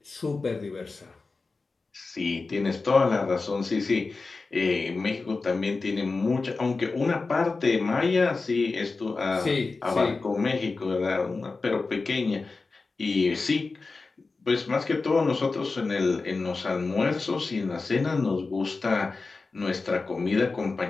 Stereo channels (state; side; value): quieter; right; 3.9 dB